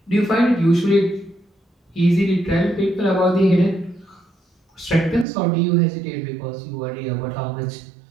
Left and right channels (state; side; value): drops out; left; at 5.2 s